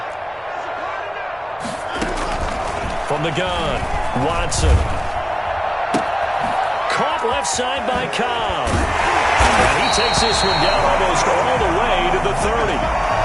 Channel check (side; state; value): both; identical; correlation 1.00